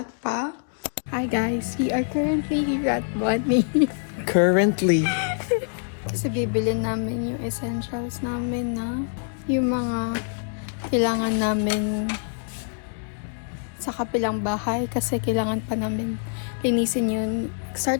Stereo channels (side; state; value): right; silent; 62 dB below the other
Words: pa. Hi, guys. We are currently here at Bonnie. Currently. Kasi bibili namin yung essentials namin na yung mga kailangan namin sa kapilang bahay kasi kailangan pa namin linisin yun.